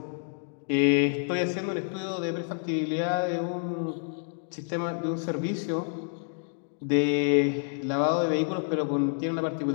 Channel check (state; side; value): silent; right; digital silence